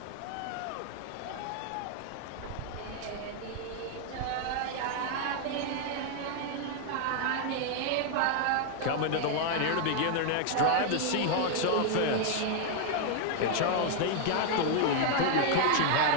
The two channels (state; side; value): different; both; correlation 0.00